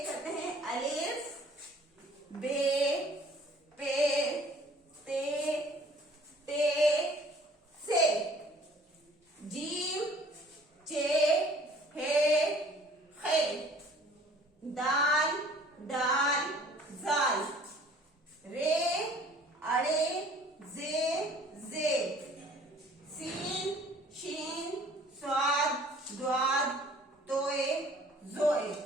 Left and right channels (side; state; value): both; normal; correlation 0.53